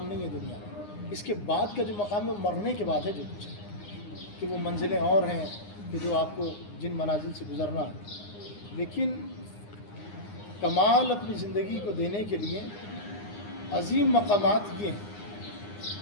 نہیں ہے دنیا میں. اس کے بعد کا جو مقام ہے وہ مرنے کے بعد ہے جو کچھ ہے، کہ وہ منزلیں اور ہیں کہ جو آپ کو جن منازل سے گزرنا ہے. لیکن کمال اپنی زندگی کو دینے کے لیے عظیم مقامات یہ ہیں.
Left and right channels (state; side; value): late; right; 9.7 ms